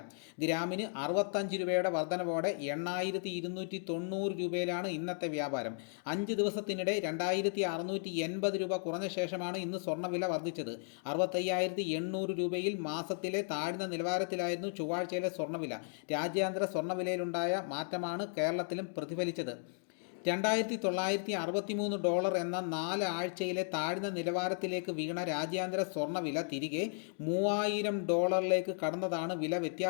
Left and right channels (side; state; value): right; silent; 54 dB below the other